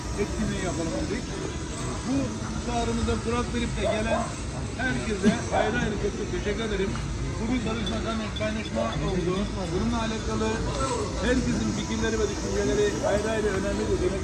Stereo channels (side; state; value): both; identical; correlation 1.00